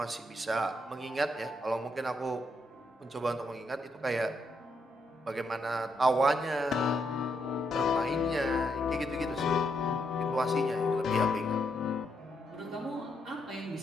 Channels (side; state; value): both; normal; correlation 0.78